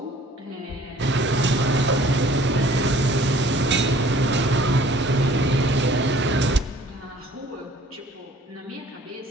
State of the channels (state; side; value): normal; both; correlation 0.54